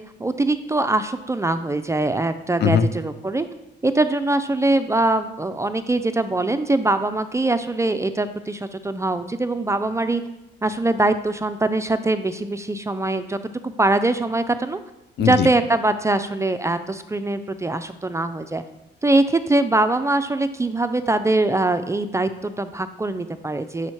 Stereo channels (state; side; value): normal; both; correlation 0.73